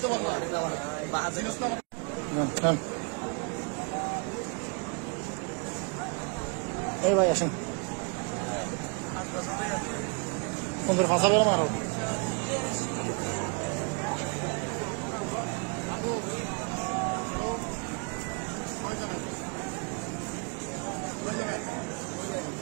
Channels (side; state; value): left; quieter; 34.9 dB